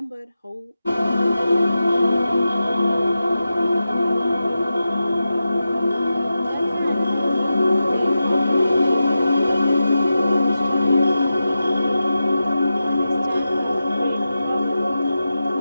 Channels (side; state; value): both; inverted; correlation -0.91